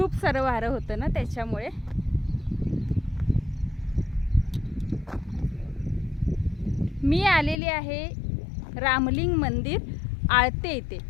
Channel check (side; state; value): right; drops out; at 7.6 s